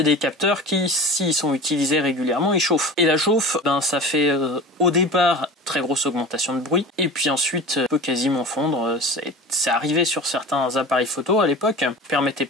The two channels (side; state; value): both; normal; correlation 0.35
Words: des capteurs qui, s'ils sont utilisés régulièrement, ils chauffent. Et la chauffe, ça fait au départ très grosse augmentation de bruit, et puis ensuite peut quasiment fondre. C'est arrivé sur certains appareils photo à l'époque, permettait